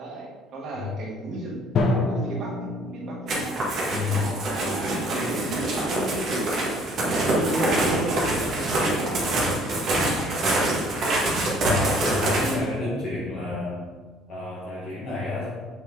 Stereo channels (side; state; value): both; normal; correlation 0.57